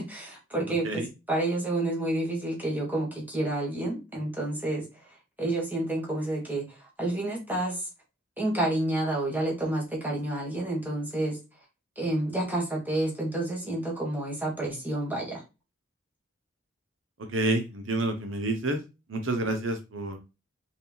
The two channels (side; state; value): both; normal; correlation 0.56